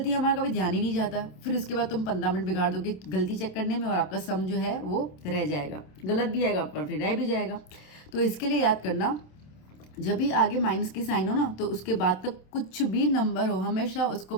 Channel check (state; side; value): late; right; 27 ms